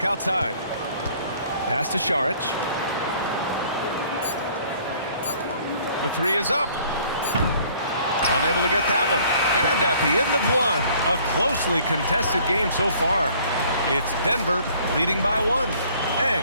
outside. Pass to Šarić. The three is up. Unable to get that one. And at the end of one, a closely contested game so far. It's Denver leading by one.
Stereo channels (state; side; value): inverted; both; correlation -0.57